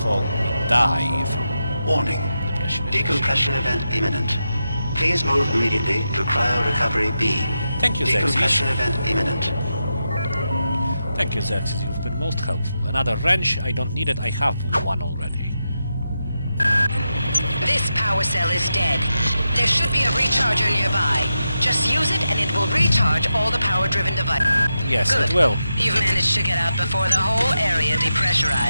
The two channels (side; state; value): both; inverted; correlation -0.88